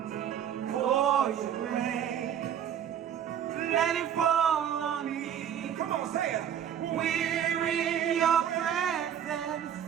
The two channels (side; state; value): left; quieter; 9.3 dB